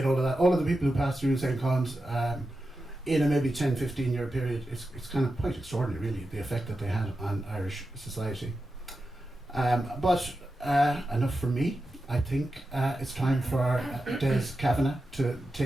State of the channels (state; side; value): normal; both; correlation 0.91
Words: all of that. All of the people who passed through St. Colum's in a maybe 10-15 year period, it's kind of quite extraordinary really, the effect that they had on Irish society. But enough from me. I think it's time for Des Kavanagh to